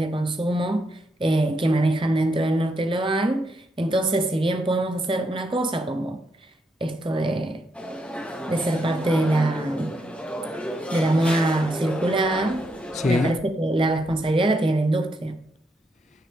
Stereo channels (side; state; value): both; normal; correlation 0.79